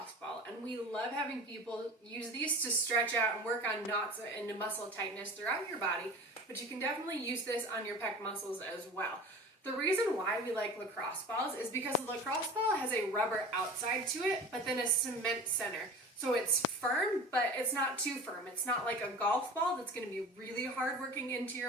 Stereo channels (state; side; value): normal; both; correlation 0.37